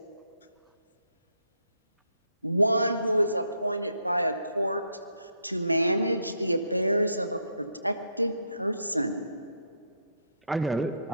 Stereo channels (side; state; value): both; inverted; correlation -0.72